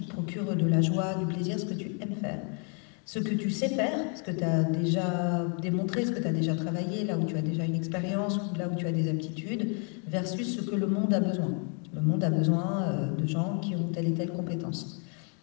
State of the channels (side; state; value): right; quieter; 39.6 dB